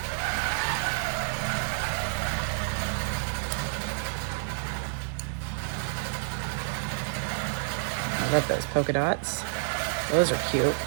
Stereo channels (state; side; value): silent; left; digital silence